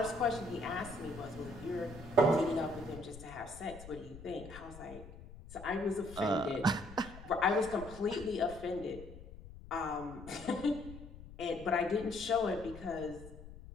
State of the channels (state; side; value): noise; left; rumble, 15 dB below the sound